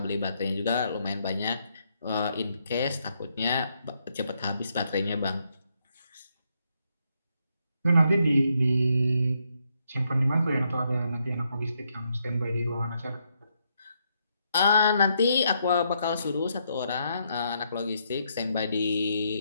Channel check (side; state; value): both; inverted; correlation -0.77